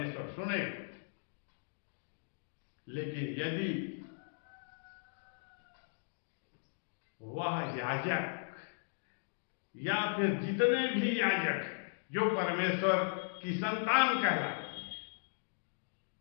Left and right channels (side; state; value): right; silent; digital silence